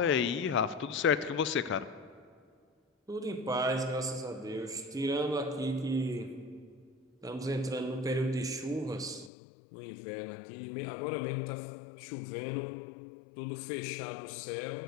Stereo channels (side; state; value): right; drops out; at 9.3 s